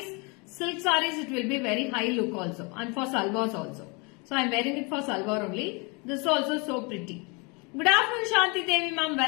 silk saris it will be very high look also, and for salwars also. So I am wearing it for salwar only. This is also so pretty. Good afternoon Shanti Devi ma'am,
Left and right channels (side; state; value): right; quieter; 30.5 dB